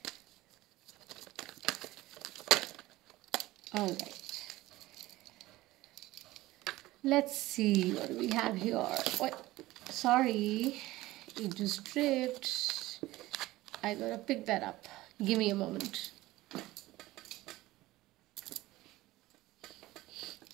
Alright. Let's see what do we have here. Wait, sorry, it just tripped. I gotta pick that up. Give me a moment.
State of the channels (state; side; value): quieter; left; 17.7 dB